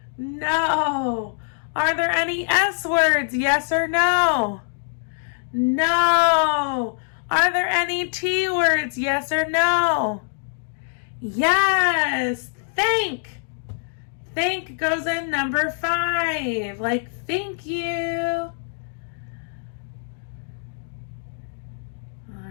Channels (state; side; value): silent; right; digital silence